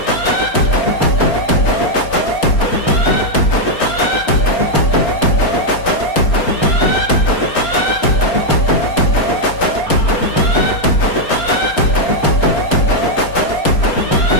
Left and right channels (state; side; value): late; right; 4.3 ms